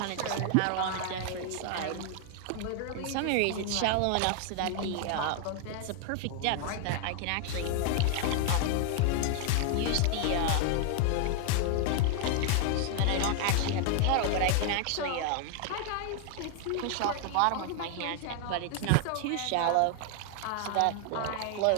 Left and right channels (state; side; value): different; both; correlation 0.00